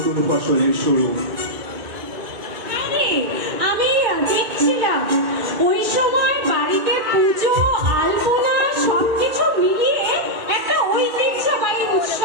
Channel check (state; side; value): late; left; 2.4 ms